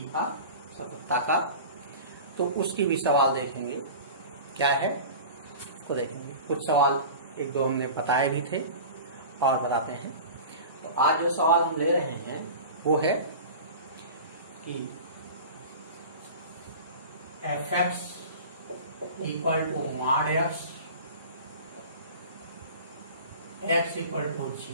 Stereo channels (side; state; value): both; inverted; correlation -0.36